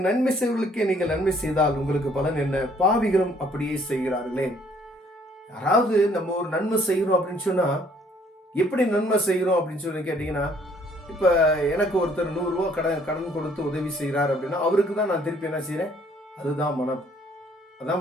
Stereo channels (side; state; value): both; normal; correlation 0.62